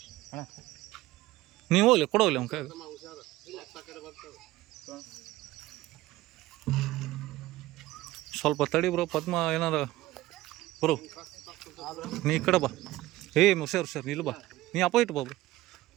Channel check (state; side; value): quieter; left; 17.0 dB